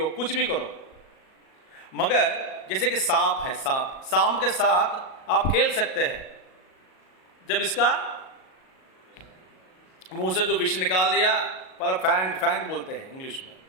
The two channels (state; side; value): late; right; 38 ms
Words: कुछ भी करो, मगर जैसे कि सांप है, सांप के साथ आप खेल सकते हैं। जब इसका मुंह से जो विष निकाल दिया, पर फैंग बोलते हैं इंग्लिश में,